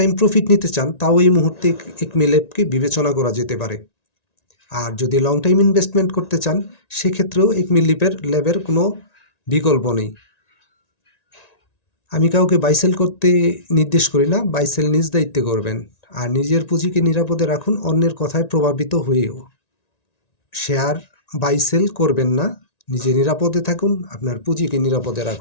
প্রফিট নিতে চান, তাও এই মুহূর্তে একমি ল্যাবকে বিবেচনা করা যেতে পারে। আর যদি লং টাইম ইনভেস্টমেন্ট করতে চান, সেক্ষেত্রেও একমি ল্যাবের কোনো বিকল্প নেই। আমি কাউকে বাইসেল করতে নির্দেশ করি না, বাইসেল নিজ দায়িত্বে করবেন। আর নিজের পুঁজিকে নিরাপদে রাখুন, অন্যের কথায় প্রভাবিত হয়েও শেয়ার বাইসেল করবেন না। নিজে নিরাপদে থাকুন, আপনার পুঁজিকে নিরাপদে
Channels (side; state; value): right; late; 1.9 ms